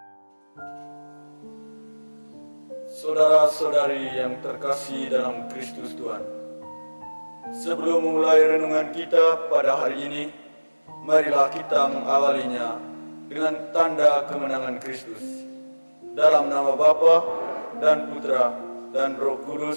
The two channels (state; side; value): inverted; both; correlation -1.00